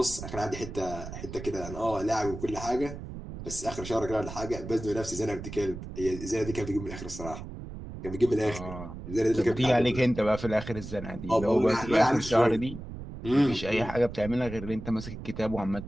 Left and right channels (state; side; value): noise; right; rumble, 10 dB below the sound